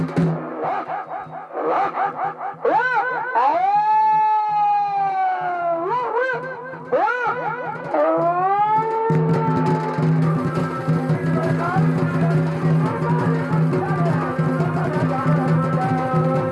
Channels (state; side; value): identical; both; correlation 1.00